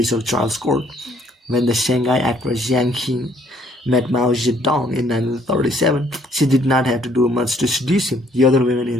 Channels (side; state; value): both; normal; correlation 0.63